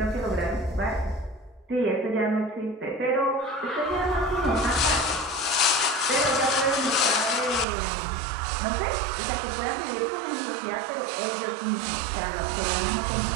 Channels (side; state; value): left; drops out; at 7.7 s